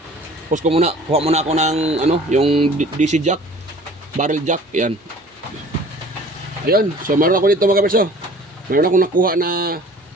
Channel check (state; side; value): normal; both; correlation 0.48